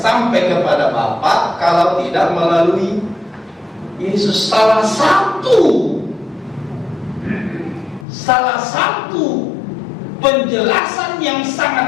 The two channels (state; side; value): drops out; right; at 8.1 s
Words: kepada Bapa kalau tidak melalui Yesus. Salah satu penjelasan yang